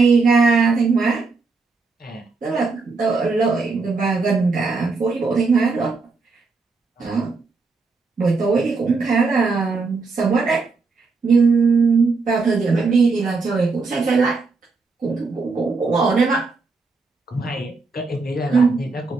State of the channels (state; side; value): quieter; left; 4.2 dB